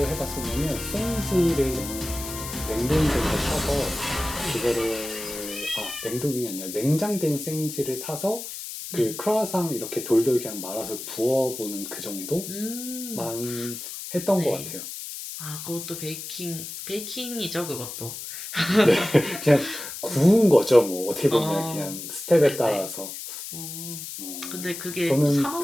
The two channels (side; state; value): left; noise; hiss, 9 dB below the sound